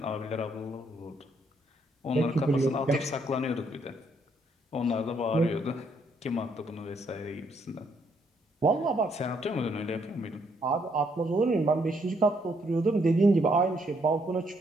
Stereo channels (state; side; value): normal; both; correlation 0.72